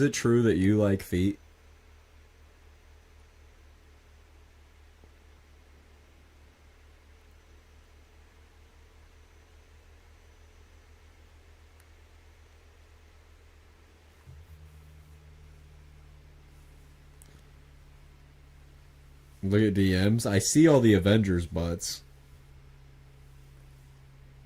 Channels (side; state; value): both; identical; correlation 1.00